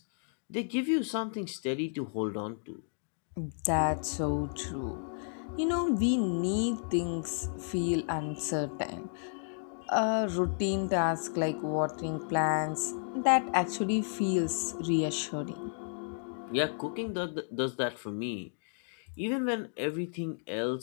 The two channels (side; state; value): right; silent; digital silence